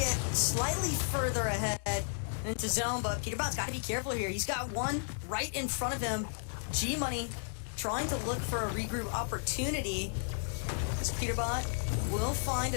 slightly further ahead into zone, but Peterbot's got to be careful here. He's got one right in front of him. G-Money trying to look for a regroup opportunity. As Peterbot will find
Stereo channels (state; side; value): silent; right; digital silence